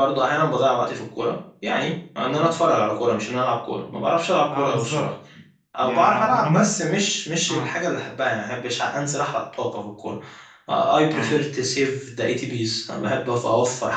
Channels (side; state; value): both; identical; correlation 1.00